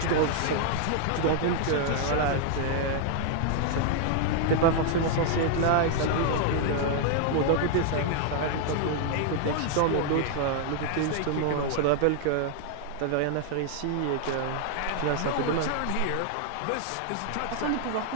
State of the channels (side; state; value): both; different; correlation 0.00